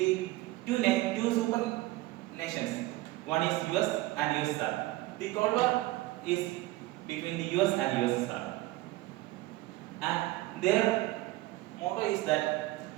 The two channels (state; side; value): quieter; left; 18.4 dB